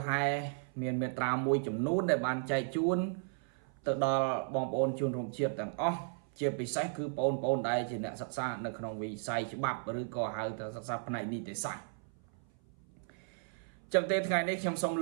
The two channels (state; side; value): silent; left; 55 dB below the other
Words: ហែមានមេត្រាមួយចំនួនដែលបានចែកជូនទៅដល់បងប្អូនជនរួមជាតិទាំងអស់ជាពិសេសគឺបងប្អូនដែលជាអ្នកសិក្សានៅក្នុងវិស័យច្បាប់ឬក៏ហៅថាសិក្សាផ្នែកនីតិសាស្ត្រចឹងទេថ្ងៃនេះខ្ញុំសូម